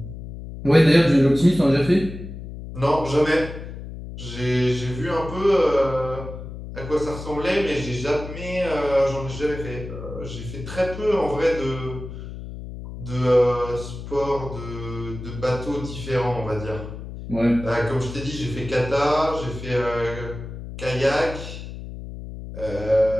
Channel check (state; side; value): noise; left; hum, 10 dB below the sound